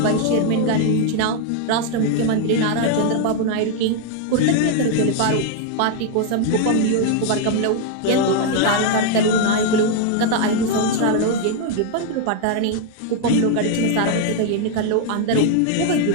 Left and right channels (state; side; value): different; both; correlation 0.00